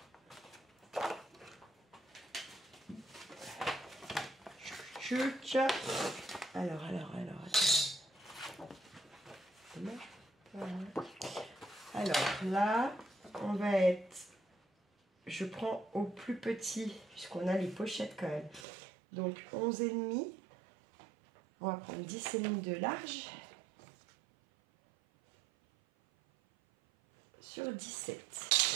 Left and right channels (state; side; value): drops out; left; at 18.7 s